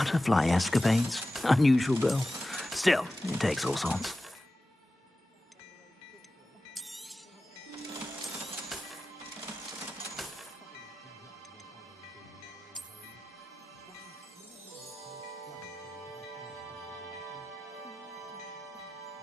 escapades. Unusual girl. Still, it takes all sorts.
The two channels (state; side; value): normal; both; correlation 0.94